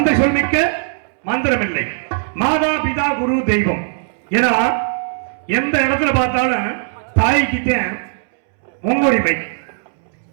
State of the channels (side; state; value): left; silent; 67 dB below the other